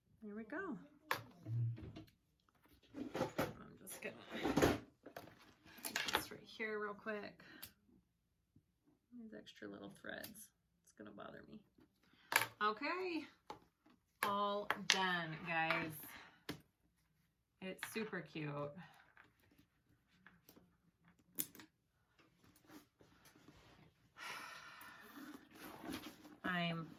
There we go. I'm just gonna put this right here real quick. These extra little threads. It's gonna bother me. Okay. All done, guys. It's super cute. I'm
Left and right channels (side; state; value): both; identical; correlation 1.00